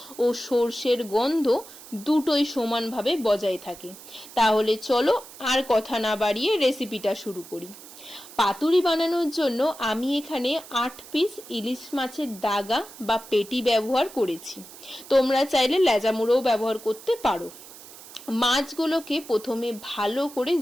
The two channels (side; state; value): right; noise; hiss, 17 dB below the sound